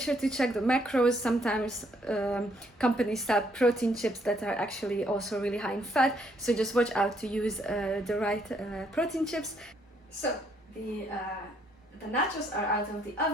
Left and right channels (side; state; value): both; normal; correlation 0.70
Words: to check the macros. Sometimes companies sell protein chips that are actually also really high in fat, so just watch out to use the right protein chips. So the nachos are out of the